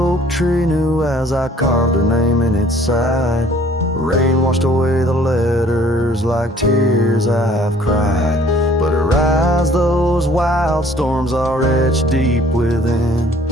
tree knew as I carved her name in its side. Rain washed away the letters like tears I've cried. But her eyes, those wild storms are etched deep within,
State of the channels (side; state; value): both; normal; correlation 0.56